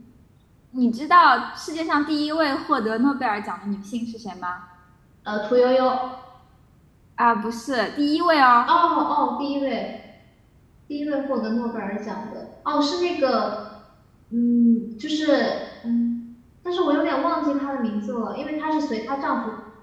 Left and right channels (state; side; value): identical; both; correlation 1.00